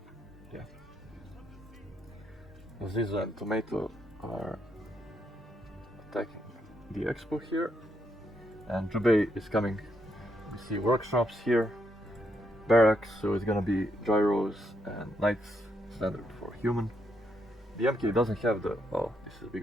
yeah. Zizo and Tomato are attacking the expo here. And Jubei is coming. We see workshops here. Barracks, so it's gonna be gyros and knights, standard for human. The MK doesn't have the, oh, this is a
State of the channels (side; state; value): both; normal; correlation 0.78